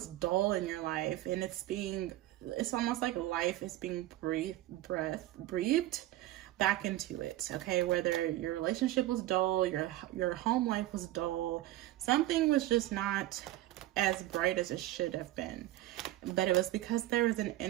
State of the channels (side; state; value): left; quieter; 15.7 dB